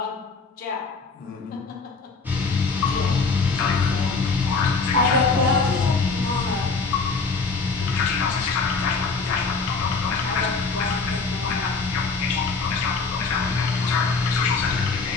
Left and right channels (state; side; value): quieter; right; 4.4 dB